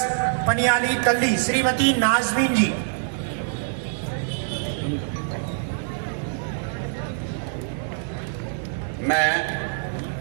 पनियाली तल्ली, श्रीमती नाजमीन जी। मैं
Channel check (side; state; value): left; silent; digital silence